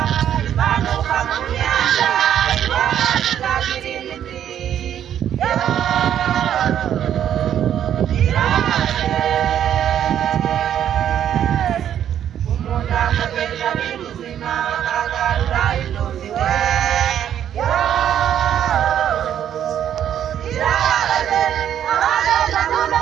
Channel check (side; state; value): left; quieter; 10.1 dB